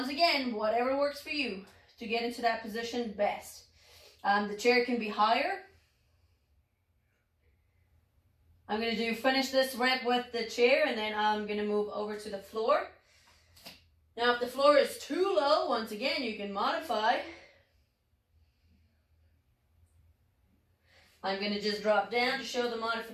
again, whatever works for you to get into that position best. The chair can be higher. I'm going to finish this rep with the chair, and then I'm going to move over to the floor. Now, if the floor is too low, once again, you can modify. I'm going to just drop down to show the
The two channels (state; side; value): identical; both; correlation 1.00